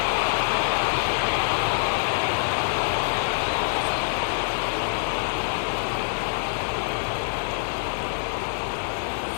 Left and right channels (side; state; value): right; silent; digital silence